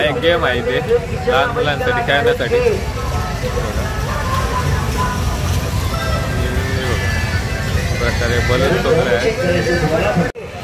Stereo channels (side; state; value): both; identical; correlation 1.00